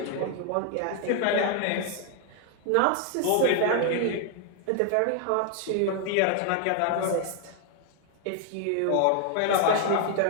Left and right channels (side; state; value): both; different; correlation 0.00